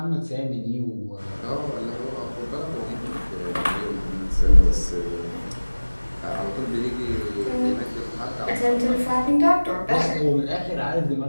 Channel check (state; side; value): inverted; both; correlation -1.00